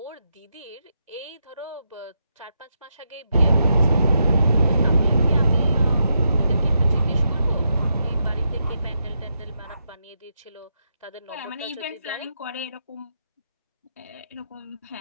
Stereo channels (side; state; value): both; inverted; correlation -0.83